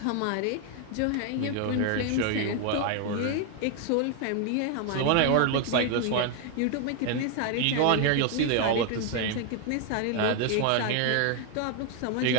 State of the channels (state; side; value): different; both; correlation 0.01